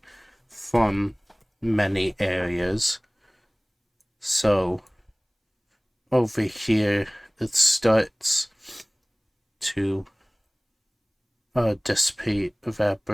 from many areas. So, over here, it starts to dissipate,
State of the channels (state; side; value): identical; both; correlation 1.00